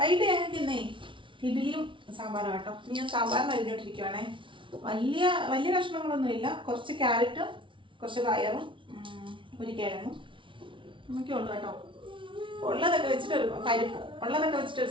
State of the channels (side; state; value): left; late; 0.25 ms